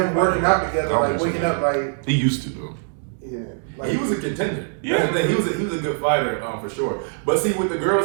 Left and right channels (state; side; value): silent; left; 64 dB below the other